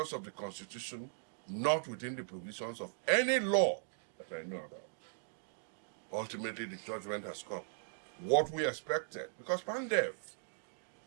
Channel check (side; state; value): left; silent; digital silence